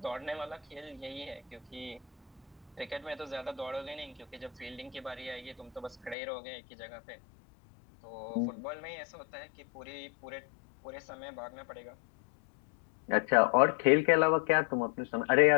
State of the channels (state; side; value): drops out; right; at 6.2 s